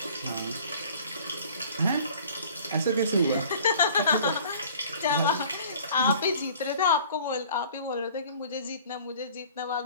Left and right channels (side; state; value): both; inverted; correlation -0.50